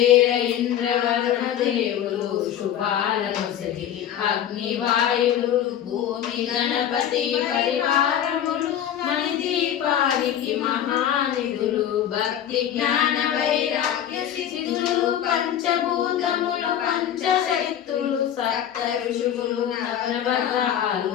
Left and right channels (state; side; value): quieter; right; 10.3 dB